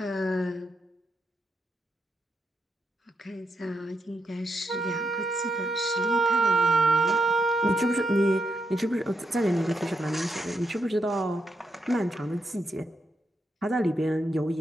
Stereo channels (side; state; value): both; normal; correlation 0.80